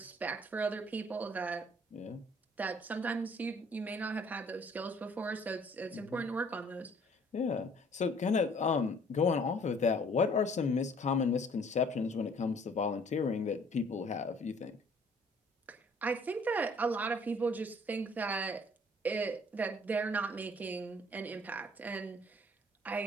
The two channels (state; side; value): normal; both; correlation 0.57